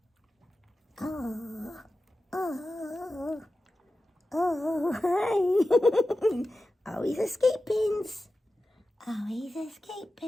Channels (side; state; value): both; normal; correlation 0.94